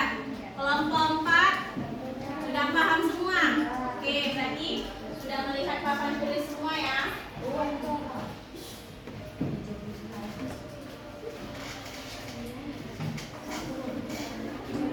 Kelompok 4 sudah paham semua? Oke, berarti sudah melihat papan tulis semua ya.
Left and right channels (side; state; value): both; identical; correlation 1.00